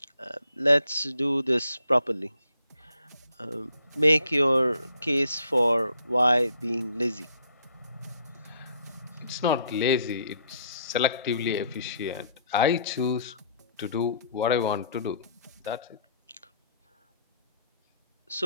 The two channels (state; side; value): inverted; both; correlation -0.65